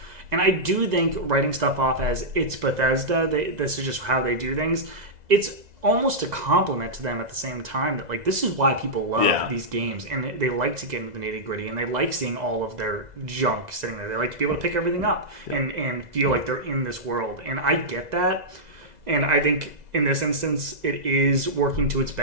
And I do think writing stuff off as it's Bethesda, this is just how they do things, it's almost a compliment to them at the same time that like this is why people love these games, and they like to get into the nitty gritty, and they like seeing all of their junk sitting there. They like to be able to pick everything up and feel like they're in this world. And I get that, and I think in this instance it is working to its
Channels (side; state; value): left; late; 2.0 ms